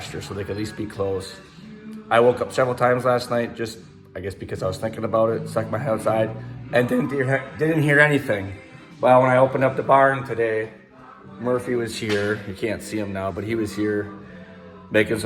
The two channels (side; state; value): both; identical; correlation 1.00